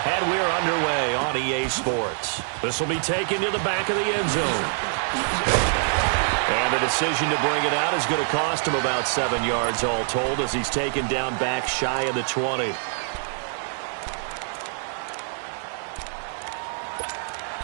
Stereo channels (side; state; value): left; silent; digital silence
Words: and we're underway on EA Sports. This will be taken to the back of the end zone. And the decision to bring it out is going to cost him about 7 yards all told as he's taken down back shy of the 20.